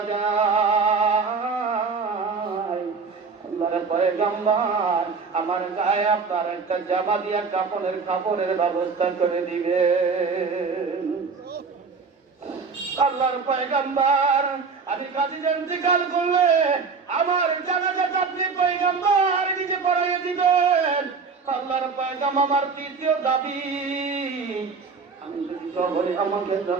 যাই, আল্লাহর পয়গম্বর আমার গায়ে আপনার একটা জামা দিয়া কাপড়ের ব্যবস্থা করে দিবেন। আল্লাহর পয়গম্বর আমি কাজীর ইন্তেকাল করলে আমার জানাজাটা আপনি পয়গম্বর নিজে পড়াইয়া দিবেন। আল্লাহর পয়গম্বর আমার তৃতীয় দাবি, আমি যদি কবরে আমাকে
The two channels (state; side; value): quieter; left; 5.0 dB